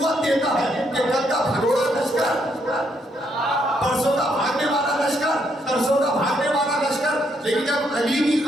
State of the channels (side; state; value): both; normal; correlation 0.74